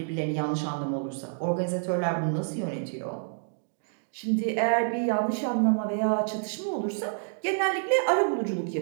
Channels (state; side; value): silent; left; digital silence